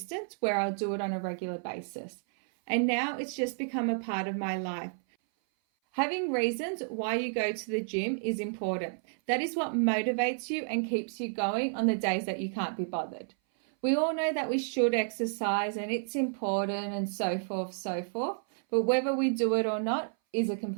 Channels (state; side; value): silent; left; 57 dB below the other